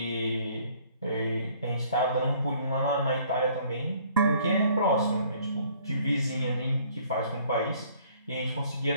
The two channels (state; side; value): inverted; both; correlation -0.59